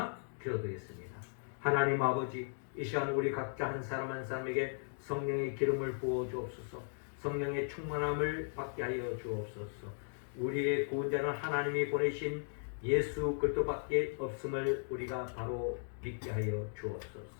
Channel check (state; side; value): silent; right; digital silence